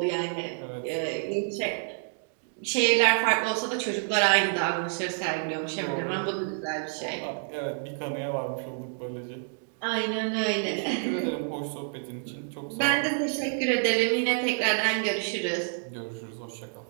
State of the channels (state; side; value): silent; left; digital silence